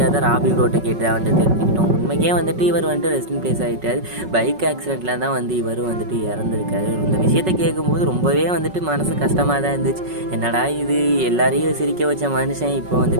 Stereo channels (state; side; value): late; left; 5.4 ms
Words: தான் ராபி ப்ரோட்டை கேட்டு வந்து தெரிஞ்சுக்கிட்டோம். உண்மைக்கே வந்துட்டு இவர் வந்துட்டு ரெஸ்ட் இன் பிளேஸ் ஆகிட்டார். பைக் ஆக்சிடெண்ட்டில் தான் வந்து இவரும் வந்துட்டு இறந்துருக்காரு. இந்த விஷயத்தை கேட்கும்போது ரொம்பவே வந்துட்டு மனசு கஷ்டமாக தான் இருந்துச்சு. என்னடா இது, எல்லாரையும் சிரிக்க வச்ச மனுஷன் இப்போ